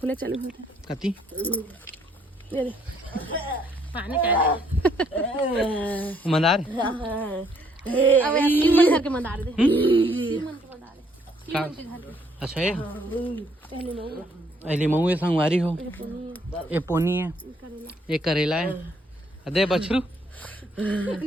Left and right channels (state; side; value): normal; both; correlation 0.68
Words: चालू होता कती ये पानी का मंदार अब तीन मन घर के मंदार दे तीन मन के मंदार है तीन मन के घर। अच्छा है पहले मऊ अली मऊ ये संगवारी हो, ये पोनी है, ये करेला है, अदे बछरू